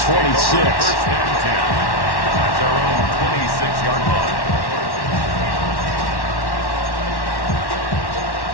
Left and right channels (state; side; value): late; right; 1.1 ms